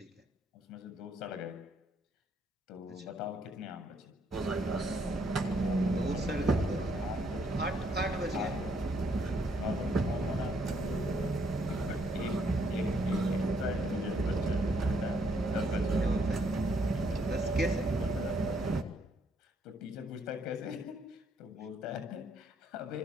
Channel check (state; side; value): normal; both; correlation 0.71